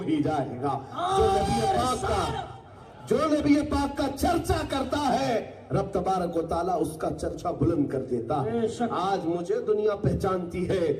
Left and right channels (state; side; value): identical; both; correlation 1.00